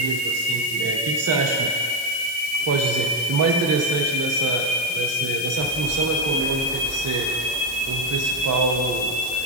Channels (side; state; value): left; noise; hiss, 10 dB below the sound